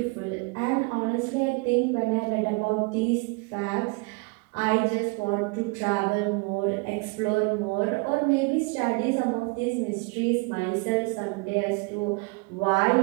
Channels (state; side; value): quieter; left; 28.3 dB